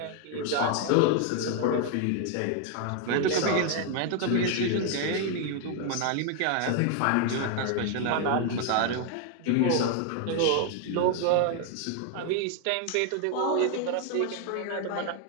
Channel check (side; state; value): both; different; correlation 0.01